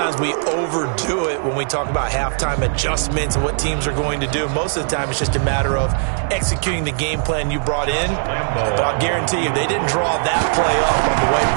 we overdo it when we talk about halftime adjustments and what teams are going to do. Most of the time, it's just a matter of executing the game plan you brought in. But I'll guarantee you, they didn't draw that play up on the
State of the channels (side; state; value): left; silent; 57 dB below the other